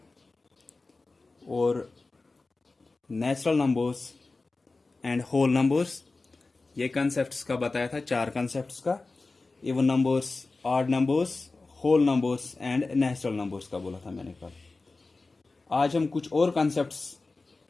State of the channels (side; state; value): right; quieter; 3.6 dB